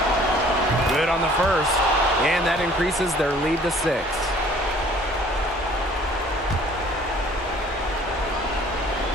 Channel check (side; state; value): both; normal; correlation 0.54